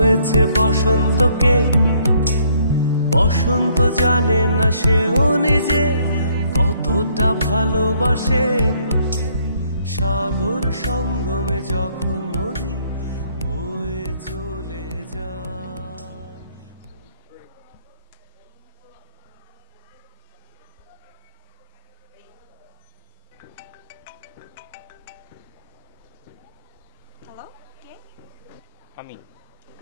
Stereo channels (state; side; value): inverted; both; correlation -0.66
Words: বসন্তকে, বসন্ত জানে না সেও নিজে কতটা ভালোবাসে। সাগর সঙ্গমে যখন নদী বয়ে চলে যায়। হ্যালো, কে? আমি